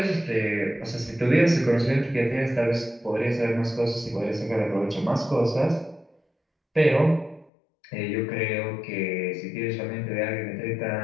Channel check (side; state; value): right; drops out; at 7.5 s